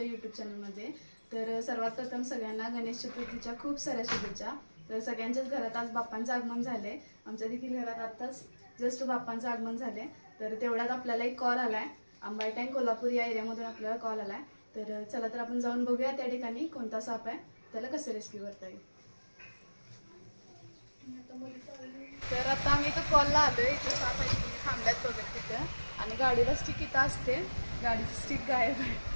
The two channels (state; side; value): inverted; both; correlation -1.00